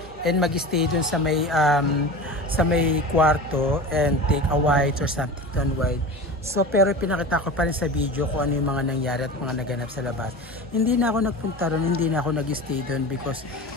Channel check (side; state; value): both; normal; correlation 0.32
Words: and mag-stay dun sa may kwarto and take a white or something to unwind. So pero pinakita ko pa rin sa video kung ano yung mga nangyari at mga naganap sa labas. Hindi na ako nagpunta ron, hindi na ako nag-stay dun because